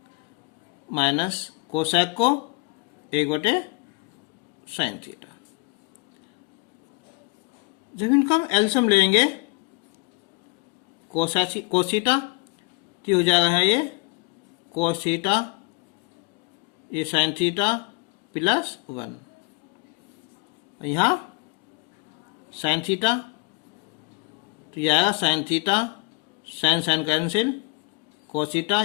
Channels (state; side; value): quieter; right; 26.4 dB